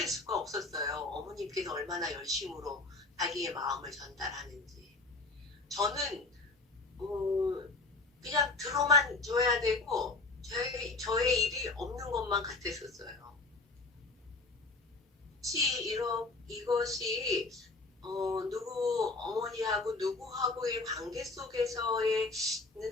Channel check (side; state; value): right; quieter; 3.4 dB